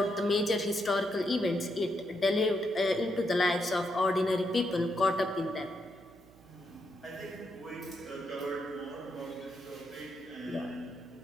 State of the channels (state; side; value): noise; right; hum, 25 dB below the sound